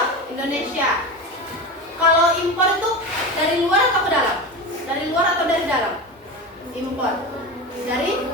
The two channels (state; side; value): normal; both; correlation 0.24